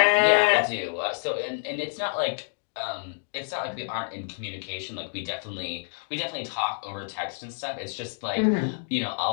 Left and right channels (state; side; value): silent; right; digital silence